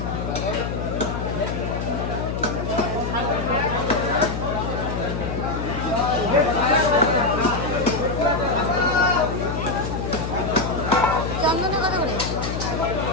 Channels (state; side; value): noise; left; hum, 4 dB below the sound